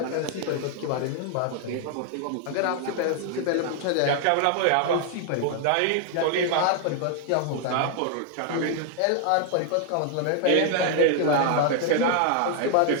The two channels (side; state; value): both; different; correlation 0.00